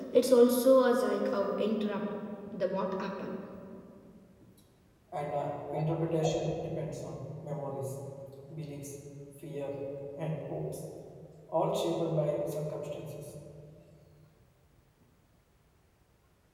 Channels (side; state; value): both; identical; correlation 1.00